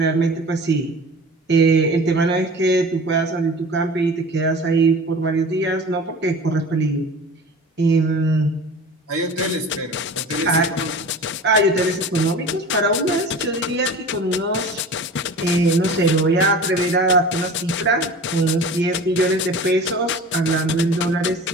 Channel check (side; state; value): both; normal; correlation 0.38